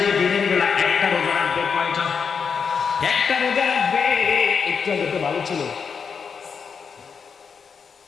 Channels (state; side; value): quieter; right; 6.1 dB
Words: দিনের বেলা একটা রোজা রাখবে, কয়টা? একটা রোজা রাখবে। একটু আগে তো ভালো ছিল,